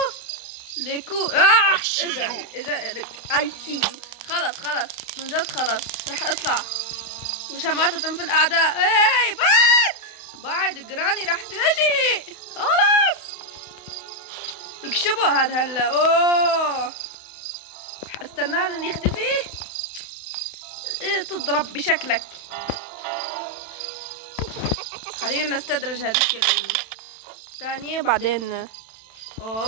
ليكو اجا لك اي سي يو. خلص من جد خلص رح اطلع وشماتة في الاعداء. اي بعد جراني رح تجي. خلص يكشبوا هذا هلا. اوه رح استناه لين يختفي. تضرب بشكلك. خلينا نستدرج هذيك الثانية بعدين.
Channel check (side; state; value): right; late; 31 ms